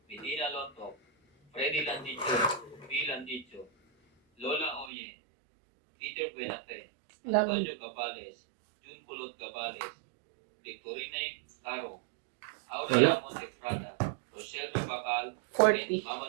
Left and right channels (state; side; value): drops out; left; at 4.9 s